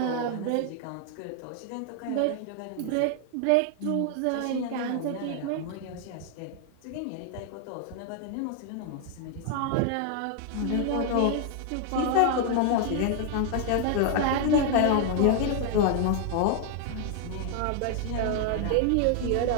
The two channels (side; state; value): both; different; correlation 0.00